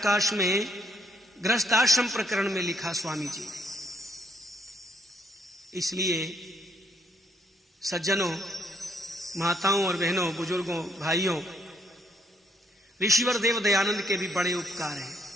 में गृहस्थ आश्रम प्रकरण में लिखा स्वामी जी ने। इसलिए सज्जनों, माताओं और बहनों, बुजुर्गों, भाइयों, ऋषिवर देव दयानंद के भी बड़े उपकार हैं।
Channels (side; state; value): both; normal; correlation 0.70